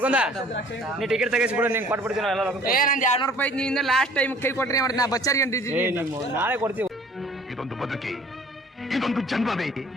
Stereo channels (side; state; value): both; normal; correlation 0.52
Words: ನೀ ಟಿಕೆಟ್ ತೆಗಿಸ್ಬಿಡು, ನಿಂಗೆ ಕೊಟ್ಬಿಡ್ತೀನಿ ಎಲ್ಲ. ಏ ನಂದು 200 ರೂಪಾಯಿ ನಿಂದ ಲಾಸ್ಟ್ ಟೈಮ್ ಕೈ ಕೊಟ್ರಿ ಮಾಡಿ ನಾ ಬಚ್ಚಾರಿಗೆ ಅಂಟಿದ್ದೀನಿ. ನಾಳೆ ಕೊಡ್ತೀವಿ. ಇದೊಂದು ಬದುಕಿ, ಇದೊಂದು ಜನ್ಮವೇ,